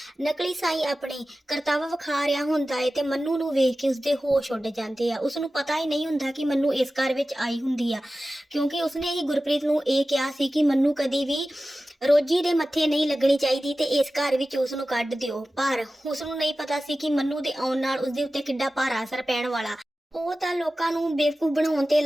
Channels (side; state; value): both; normal; correlation 0.95